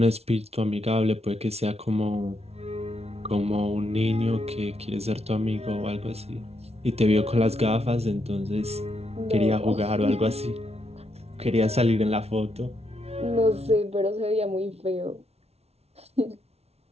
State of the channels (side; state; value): left; late; 0.31 ms